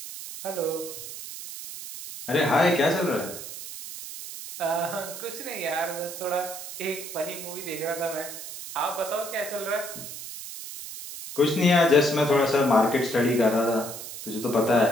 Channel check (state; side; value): noise; right; hiss, 10 dB below the sound